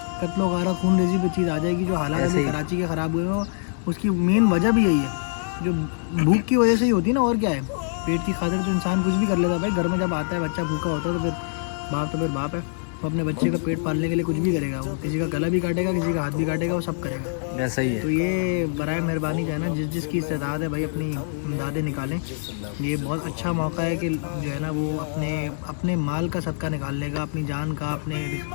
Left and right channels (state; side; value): silent; right; 59 dB below the other